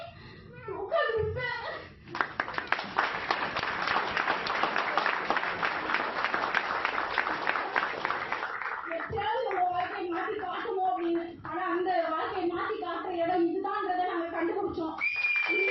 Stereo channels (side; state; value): both; identical; correlation 1.00